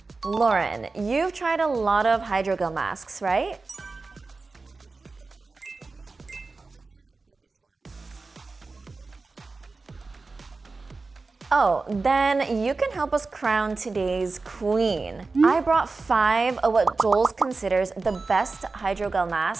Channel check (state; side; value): quieter; left; 3.9 dB